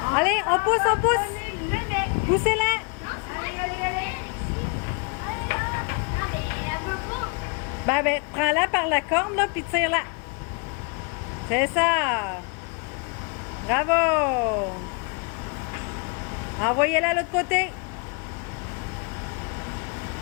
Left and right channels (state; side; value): quieter; right; 34.0 dB